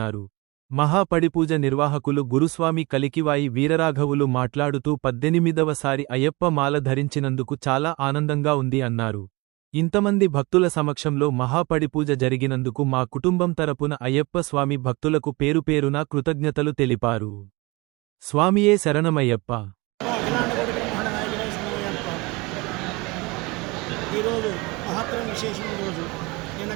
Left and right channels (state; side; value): quieter; left; 24.6 dB